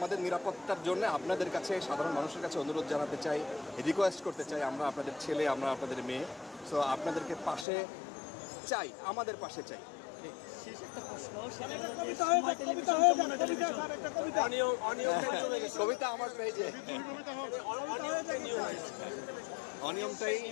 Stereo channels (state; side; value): drops out; right; at 7.7 s